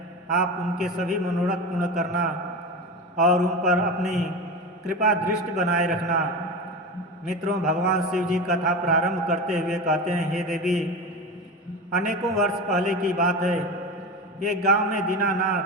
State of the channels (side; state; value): both; normal; correlation 0.24